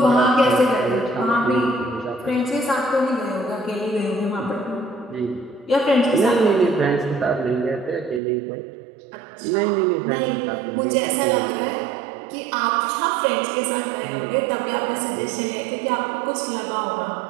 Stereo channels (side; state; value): left; drops out; at 8.2 s